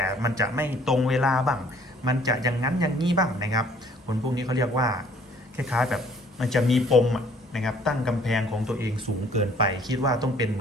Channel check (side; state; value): both; normal; correlation 0.58